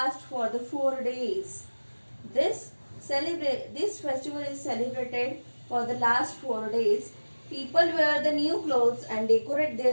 for the 4 days. This festival is celebrated for the last 4 days. People wear the new clothes and decorate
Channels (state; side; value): inverted; both; correlation -1.00